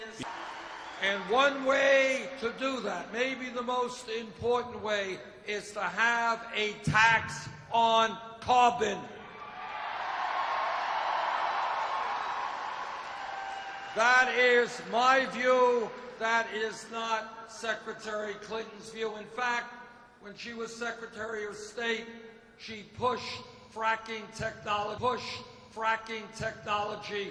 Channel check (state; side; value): identical; both; correlation 1.00